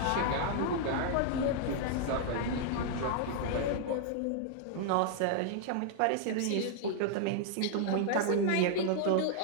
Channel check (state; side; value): different; both; correlation -0.01